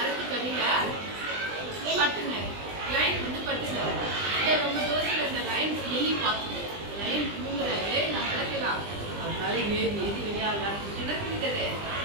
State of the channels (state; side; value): late; left; 20 ms